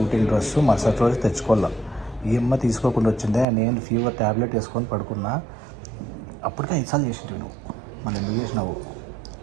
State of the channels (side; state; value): left; drops out; at 3.5 s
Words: డ్రెస్ మరుసటి రోజు తెచ్చుకోవాలా. ఈ అమ్మ తీసుకోకుండా వచ్చిందే. నేను ఫీవర్ ట్యాబ్లెట్ వేసుకొని పడుకున్నా. అప్పటికే 5 సార్లు చేసింది నువ్వు. మళ్ళీ ఎందుకు చేసినావు?